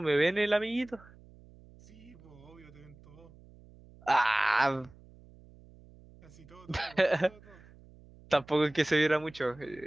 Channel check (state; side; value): noise; right; hum, 23 dB below the sound